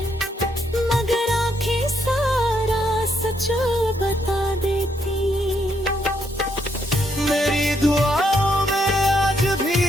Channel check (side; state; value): both; normal; correlation 0.75